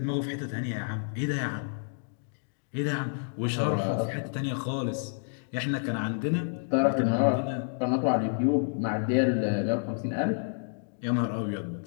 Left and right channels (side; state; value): right; silent; digital silence